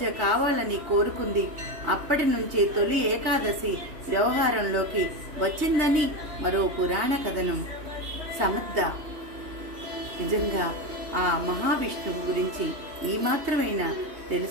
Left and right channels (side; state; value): left; late; 3.2 ms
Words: కావాలని కోరుకుంది. అప్పటి నుంచి తొలి ఏకాదశి వ్యవహారంలోకి వచ్చిందని మరో పురాణ కథనం. సమర్థ, నిజంగా ఆ మహావిష్ణువు గురించి ఈ మాత్రమైనా